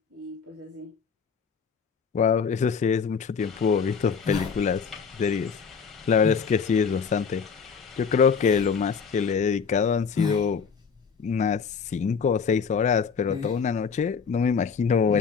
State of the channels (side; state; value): right; quieter; 6.0 dB